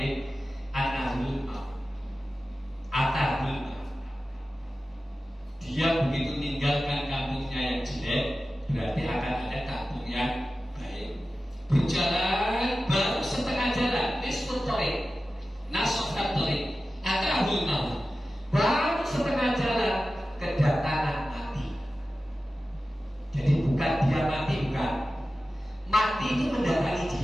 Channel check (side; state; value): both; normal; correlation 0.94